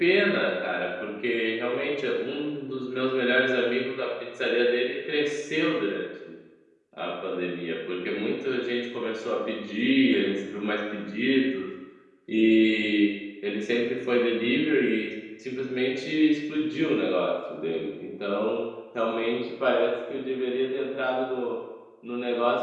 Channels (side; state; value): both; identical; correlation 1.00